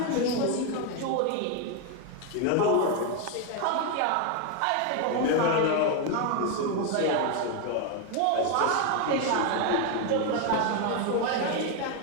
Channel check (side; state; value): both; different; correlation 0.01